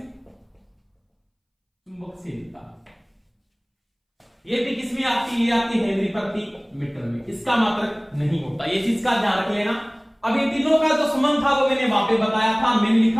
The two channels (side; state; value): both; identical; correlation 1.00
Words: चुंबकशीलता। ये भी किसमें आती है, ये आती है हेनरी प्रति मीटर में, इसका मात्रक नहीं होता, ये चीज का ध्यान रख लेना। अब इन तीनों का जो संबंध था वो मैंने वहां पे बताया था, मैंने